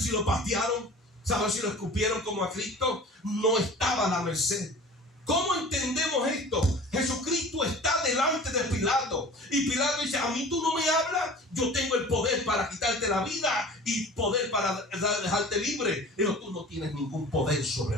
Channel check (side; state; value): both; normal; correlation 0.42